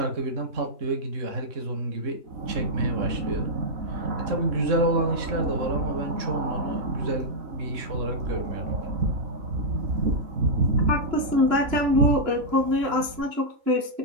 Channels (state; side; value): late; left; 3.0 ms